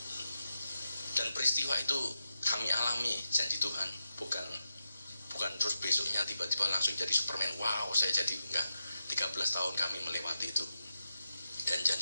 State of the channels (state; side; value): inverted; both; correlation -0.89